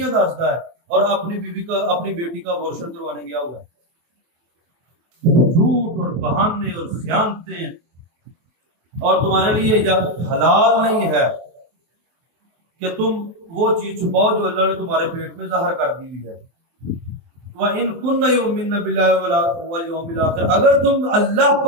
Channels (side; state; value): left; late; 23 ms